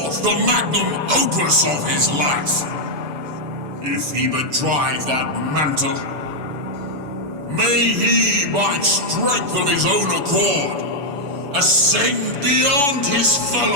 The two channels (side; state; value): left; late; 7.0 ms